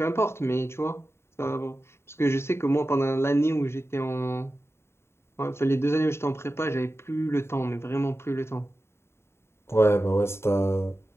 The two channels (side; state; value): right; late; 0.12 ms